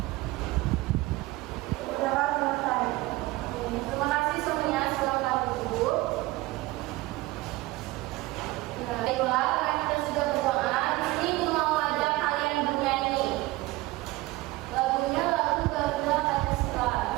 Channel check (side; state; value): left; quieter; 19.7 dB